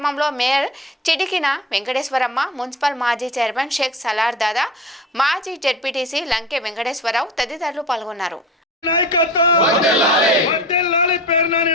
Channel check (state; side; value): normal; both; correlation 0.35